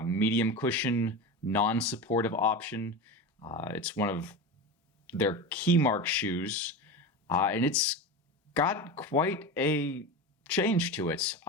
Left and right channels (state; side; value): normal; both; correlation 0.24